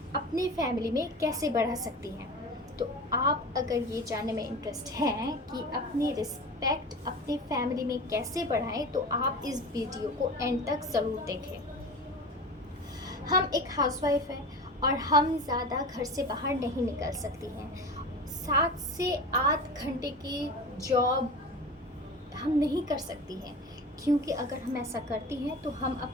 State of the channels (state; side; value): normal; both; correlation 0.32